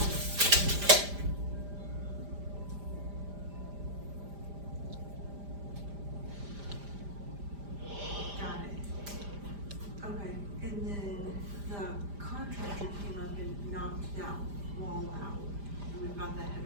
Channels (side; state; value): left; late; 5.0 ms